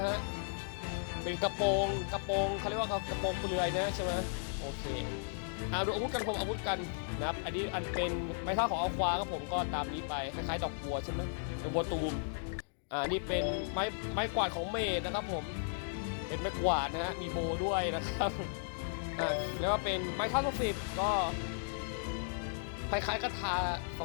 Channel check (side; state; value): right; silent; digital silence